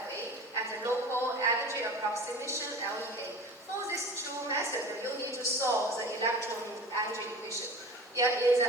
and the local energy approximation, LEA. For these two methods, you need to solve the electron energy equation. In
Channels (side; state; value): both; normal; correlation 0.38